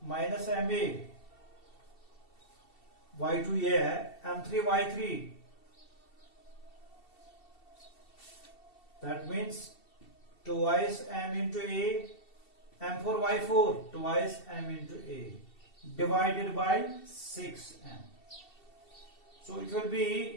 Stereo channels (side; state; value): right; late; 2.7 ms